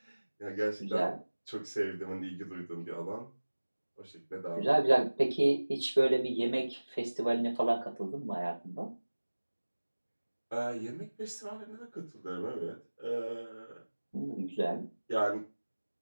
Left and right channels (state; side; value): inverted; both; correlation -1.00